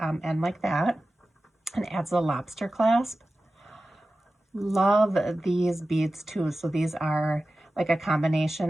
end like that and adds a lobster clasp. Love these beads too. So these are like a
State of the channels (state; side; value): normal; both; correlation 0.94